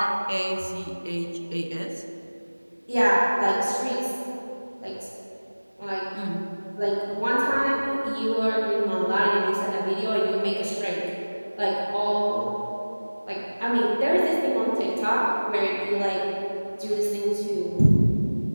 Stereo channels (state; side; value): inverted; both; correlation -1.00